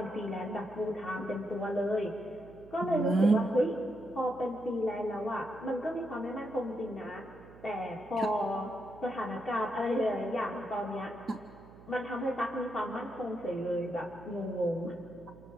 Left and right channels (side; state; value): right; noise; hum, 19 dB below the sound